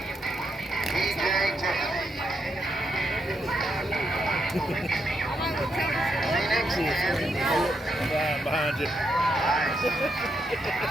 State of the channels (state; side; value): normal; both; correlation 0.80